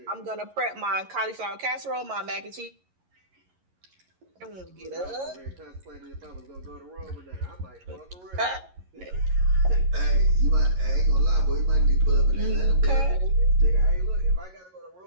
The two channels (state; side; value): late; left; 11 ms